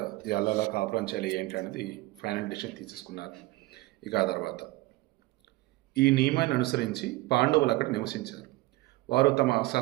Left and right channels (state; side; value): quieter; left; 19.9 dB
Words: ఎలా కాపురం చేయాలి ఏంటి అనేది ఫైనల్ డిసిషన్ తీసేసుకున్నారు. ఇక ఆ తర్వాత ఈ నియమాన్ని అనుసరించి పాండవులు అక్కడ నివసించారు. వారు తమ